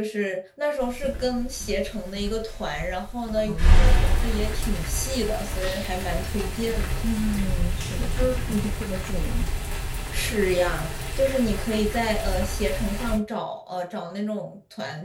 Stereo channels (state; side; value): identical; both; correlation 1.00